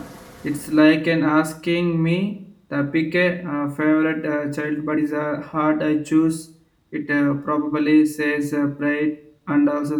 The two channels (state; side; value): identical; both; correlation 1.00